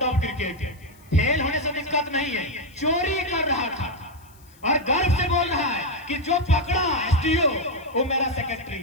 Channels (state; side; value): noise; left; hiss, 28 dB below the sound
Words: ऑफ क्रिकेट है, फेल होने से दिक्कत नहीं है, चोरी कर रहा था और गर्व से बोल रहा है कि जो पकड़ा एसडीओ वो मेरा सेक्रेटरी